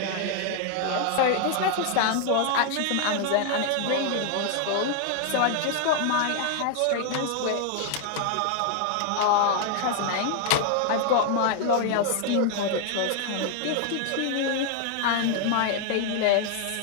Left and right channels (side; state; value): both; different; correlation 0.00